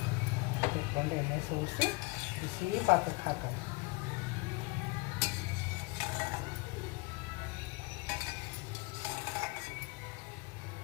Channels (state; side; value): quieter; right; 25.0 dB